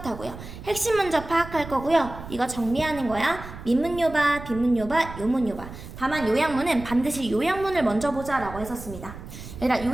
핵심 먼저 파악할 거고요. 이거 정리하는 거야. 민문요바, 빈문요바, 요문요바. 다만 요약문은 반드시 요약문을 먼저 보자라고 했었습니다. 얘들아,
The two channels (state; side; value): noise; right; rumble, 13 dB below the sound